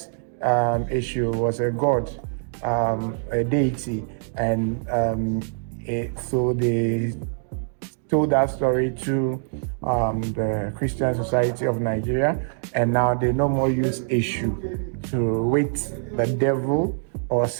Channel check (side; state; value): left; silent; digital silence